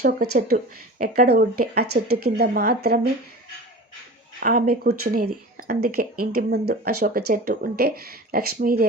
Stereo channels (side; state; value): both; normal; correlation 0.35